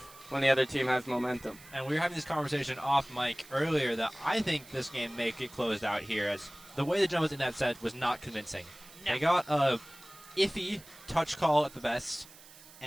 when the other team has momentum. And we were having this conversation off mic earlier that I think this game may get closed out here, as the way the Jumbos in that set was not convincing. No. They got a iffy touch call at the best,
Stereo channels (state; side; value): noise; right; hiss, 21 dB below the sound